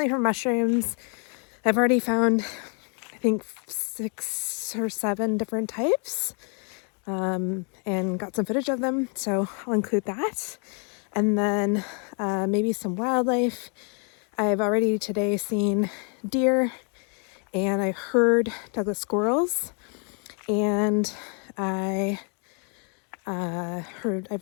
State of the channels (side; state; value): right; quieter; 39.1 dB